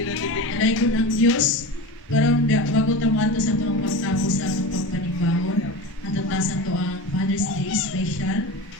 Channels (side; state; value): both; normal; correlation 0.29